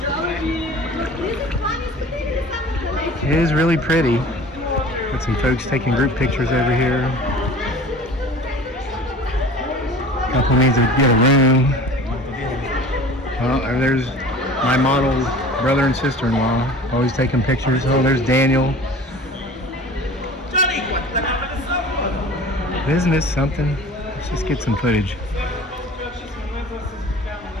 It is really pretty. Got some folks taking group pictures over here. Couple needs to get a room. Well, there's my model brother and sister-in-law, always taking pictures. Oh, there's Daniel. Isn't this something? Let's just get some footage.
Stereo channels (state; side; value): normal; both; correlation 0.42